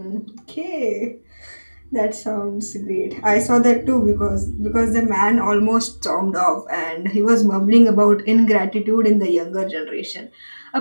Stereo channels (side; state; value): both; inverted; correlation -1.00